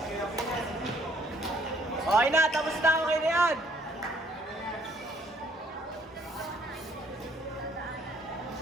Okay na, tapos na ako kayo na yan.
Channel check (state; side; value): normal; both; correlation 0.64